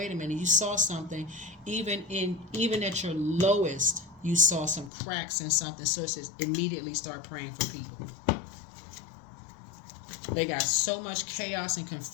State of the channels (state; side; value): drops out; right; at 4.9 s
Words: a minute, you saw something, even at your lowest, you saw some cracks in something. Sources immediately start praying for people. They got so much chaos and